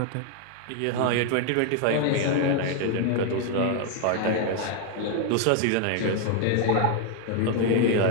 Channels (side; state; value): both; different; correlation 0.01